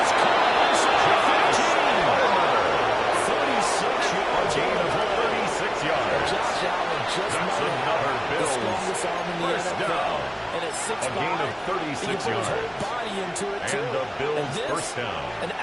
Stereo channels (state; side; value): identical; both; correlation 1.00